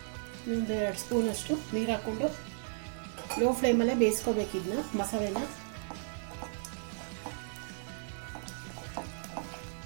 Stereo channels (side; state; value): left; silent; 55 dB below the other